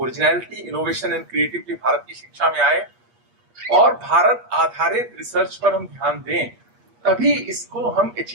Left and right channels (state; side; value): late; left; 8.4 ms